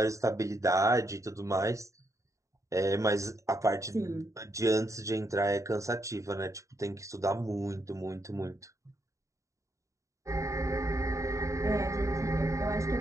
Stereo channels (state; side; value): late; left; 0.15 ms